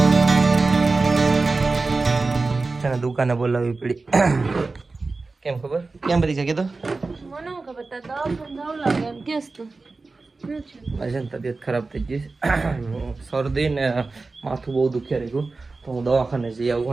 છે ને દુકાને બોલાવવી પડી. કેમ ખબર કેમ બધી છે કીધું મને ખબર તા દવા જાવ લાગે એમ કેસ તો આજે તબિયત ખરાબ થઈ ગઈ, શરદી ને માથું બહુ દુખ્યા રહ્યું તો હું દવાખાને જઈ આવું.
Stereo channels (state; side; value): quieter; left; 3.7 dB